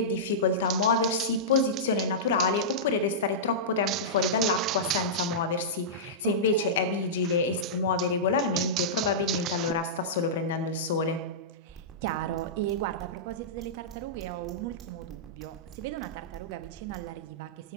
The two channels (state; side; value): normal; both; correlation -0.15